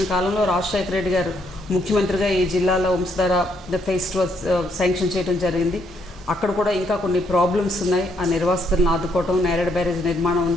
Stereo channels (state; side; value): normal; both; correlation 0.72